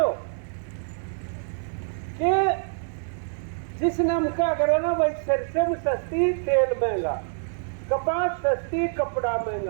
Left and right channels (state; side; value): silent; left; digital silence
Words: कि जिसने हम क्या करो ना भाई, सरसों सस्ती तेल महंगा, कपास सस्ती कपड़ा